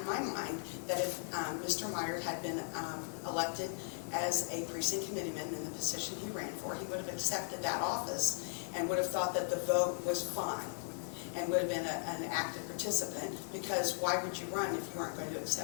my mind that if Mr. Meyer had been elected as a precinct committeeman in the position he ran for, he would have accepted that office and would have thought that the vote was fine and would have been an active participant, because why would you run if you aren't going to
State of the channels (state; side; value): silent; right; digital silence